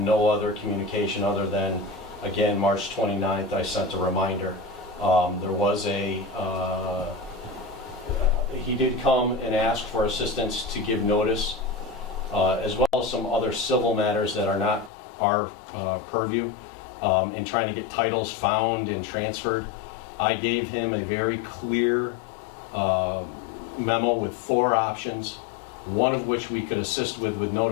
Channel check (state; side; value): drops out; right; at 14.9 s